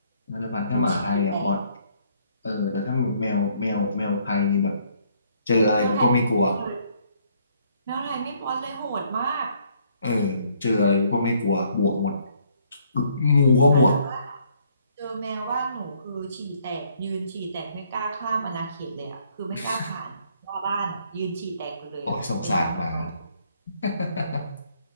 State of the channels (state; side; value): inverted; both; correlation -0.66